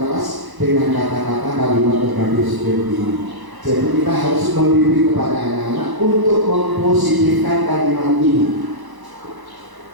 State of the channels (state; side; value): late; left; 1.1 ms